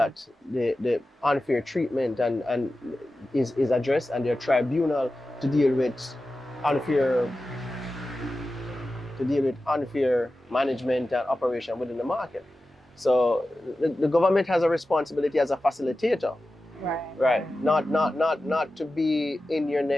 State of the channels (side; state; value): both; normal; correlation 0.94